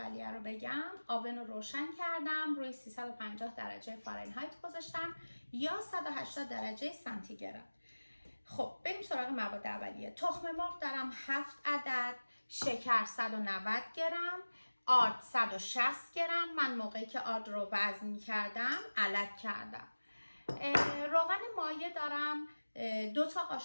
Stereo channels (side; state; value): both; inverted; correlation -1.00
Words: رو بگم، آون رو روشن کردم، روی 350 درجه فارنهایت گذاشتم یا 180 درجه سانتیگراد. خب بریم سراغ مواد اولیه. تخم مرغ دارم 7 عدد، شکر 190 گرم، آرد 160 گرم. من موقعی که آرد رو وزن می کردم علک کردم. روغن مایع دارم 2 تا